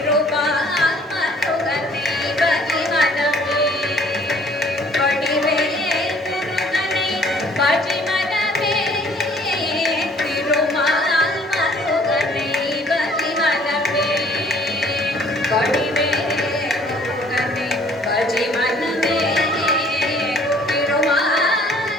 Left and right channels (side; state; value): both; normal; correlation 0.57